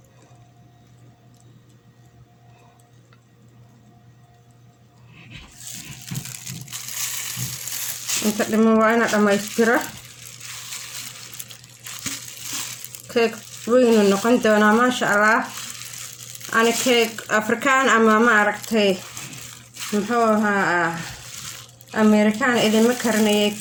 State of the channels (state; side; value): identical; both; correlation 1.00